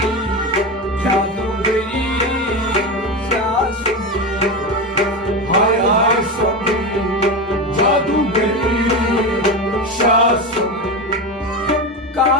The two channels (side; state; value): both; normal; correlation 0.19